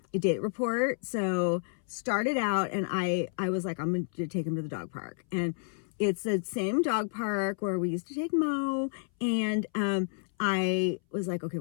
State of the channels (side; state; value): right; silent; 58 dB below the other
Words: A date report. So started out, and I was like, I'm going to take him to the dog park. And it's the same dog park where we used to take Mo. And I was like, okay,